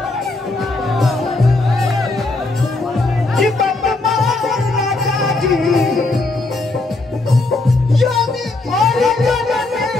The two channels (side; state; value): right; quieter; 3.2 dB